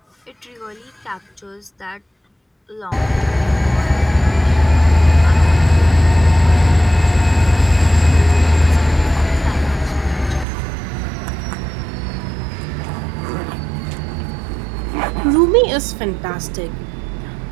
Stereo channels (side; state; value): left; drops out; at 10.5 s